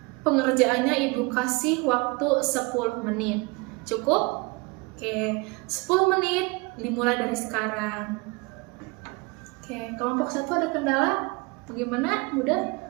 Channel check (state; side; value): quieter; left; 27.0 dB